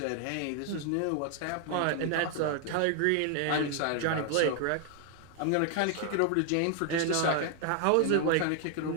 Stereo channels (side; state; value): both; different; correlation 0.00